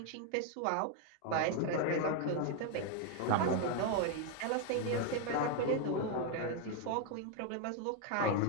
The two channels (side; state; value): both; different; correlation 0.01